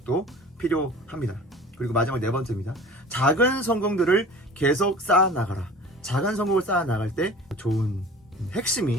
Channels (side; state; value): both; normal; correlation 0.42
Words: 필요합니다. 그리고 마지막 네 번째입니다. 작은 성공들을 계속 쌓아나가라. 작은 성공을 쌓아 나갈 때 좋은